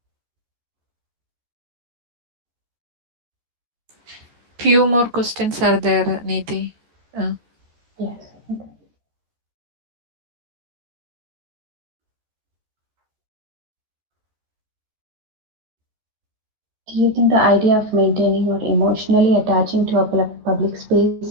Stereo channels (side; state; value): left; late; 13 ms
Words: Few more questions are there, Neeti. Yes. Okay. Do you think the idea of maintaining or emotionally attaching to a public